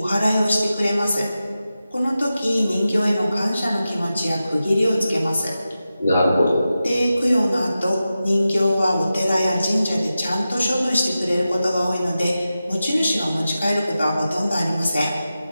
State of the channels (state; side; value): inverted; both; correlation -0.92